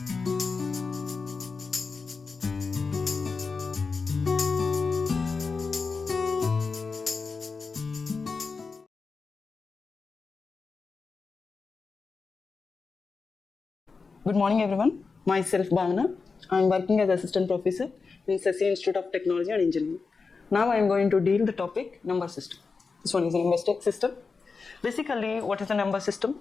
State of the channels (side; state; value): right; quieter; 4.6 dB